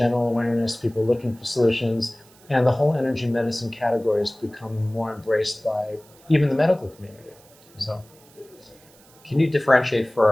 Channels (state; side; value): noise; right; hiss, 27 dB below the sound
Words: awareness, people looking for solutions, and the whole energy medicine category has become more embraced by even the medical community. So, can you differentiate for